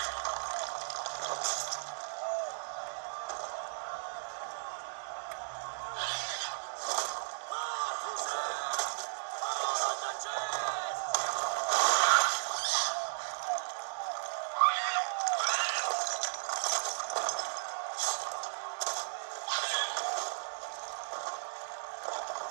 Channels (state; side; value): silent; left; digital silence